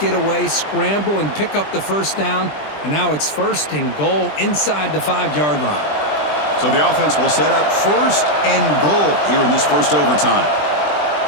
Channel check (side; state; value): right; late; 20 ms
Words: away, scramble, and pick up the first down. And now it's 1st and goal inside the 5-yard line. So the offense will set up 1st and goal here in this first overtime.